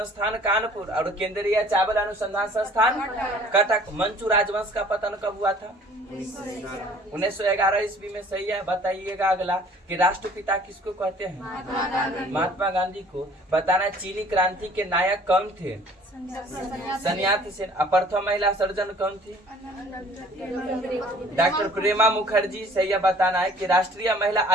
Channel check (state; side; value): normal; both; correlation 0.53